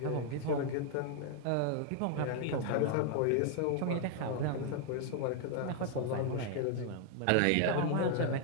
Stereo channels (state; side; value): different; both; correlation 0.00